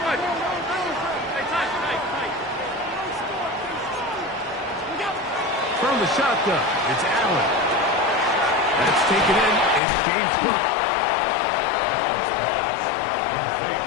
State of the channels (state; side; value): drops out; right; at 9.8 s